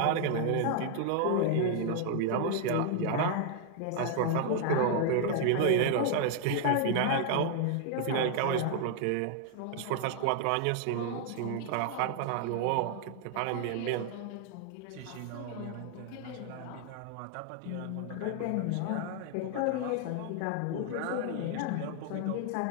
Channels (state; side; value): different; both; correlation 0.00